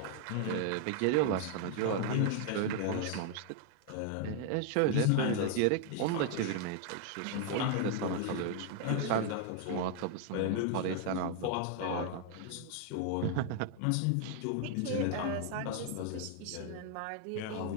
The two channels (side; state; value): both; different; correlation 0.00